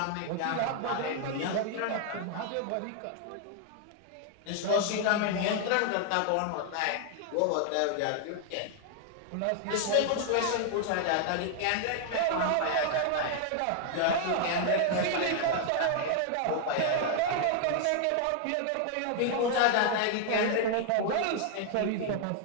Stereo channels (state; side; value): different; both; correlation 0.00